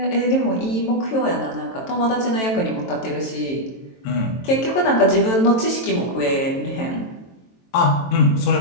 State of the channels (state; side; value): late; right; 23 ms